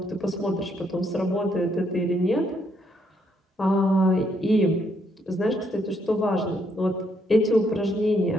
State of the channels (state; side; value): normal; both; correlation 0.73